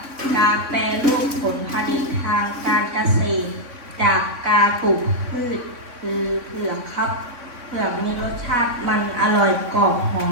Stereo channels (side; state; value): left; late; 3.6 ms